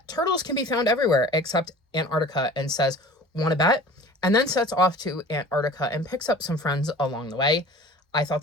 turtles can be found everywhere except Antarctica and says, "Want to bet?" And then sets off to Antarctica and picks up some friends along the way. I thought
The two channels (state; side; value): normal; both; correlation 0.43